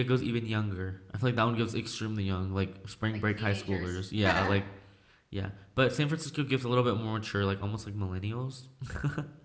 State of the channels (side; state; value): both; identical; correlation 1.00